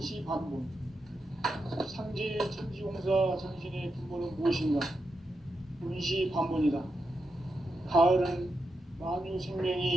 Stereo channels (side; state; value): both; normal; correlation 0.86